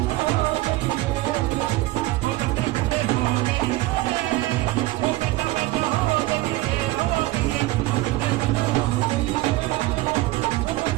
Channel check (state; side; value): quieter; left; 18.7 dB